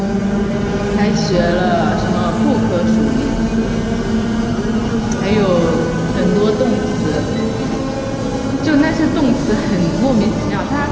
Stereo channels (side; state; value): both; identical; correlation 1.00